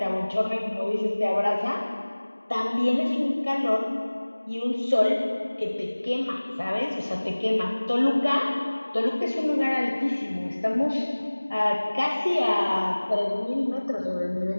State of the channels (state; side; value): inverted; both; correlation -1.00